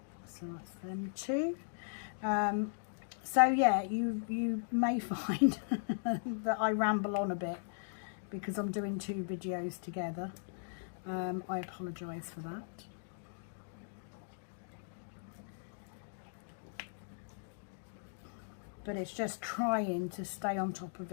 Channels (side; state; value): right; silent; digital silence